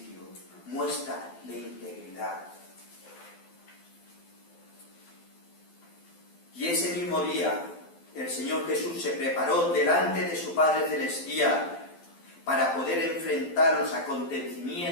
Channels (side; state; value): right; late; 12 ms